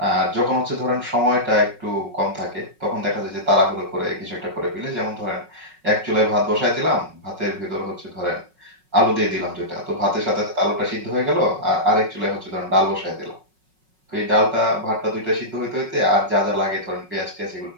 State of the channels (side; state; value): left; late; 5.4 ms